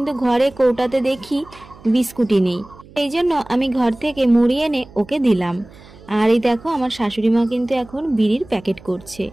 ঘরে কৌটাতে দেখি বিস্কুটই নেই। এই জন্য আমি ঘর থেকে মুড়ি এনে ওকে দিলাম। আর এই দেখো আমার শাশুড়ি মা কিন্তু এখন বিড়ির প্যাকেট করছে।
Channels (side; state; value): right; noise; hum, 22 dB below the sound